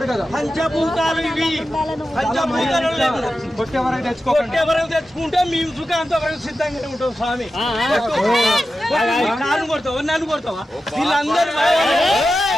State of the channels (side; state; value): both; normal; correlation 0.92